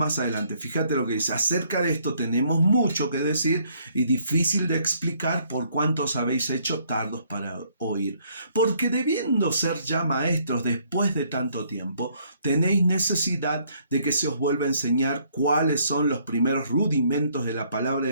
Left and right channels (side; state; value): both; inverted; correlation -0.66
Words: adelante. Fíjate lo que dice. Acerca de esto tenemos mucho que decir y difícil de explicar por cuánto os habéis hecho tardos para oír. Porque debiendo ser ya maestros después de tanto tiempo, tenéis necesidad de que se os vuelva a enseñar cuáles son los primeros rudimentos de la palabra